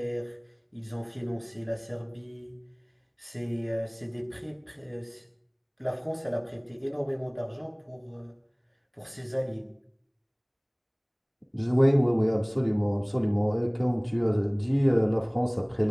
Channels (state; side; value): identical; both; correlation 1.00